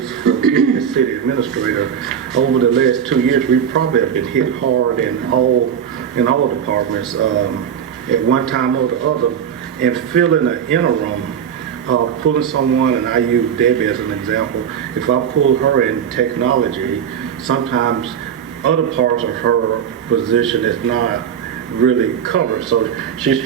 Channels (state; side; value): quieter; left; 8.2 dB